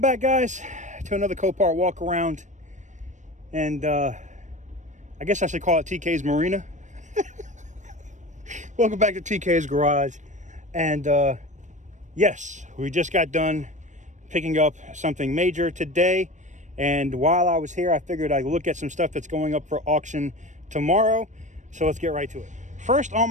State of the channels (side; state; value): left; late; 0.35 ms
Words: back, guys, to another Copart walk around. And I guess I should call it TK's Marina. Welcome back to TK's Garage. And yes, we just got done picking up something major today. And while I was here, I figured I'd look at some stuff that's going up for auction tomorrow. So let's get right to it. First on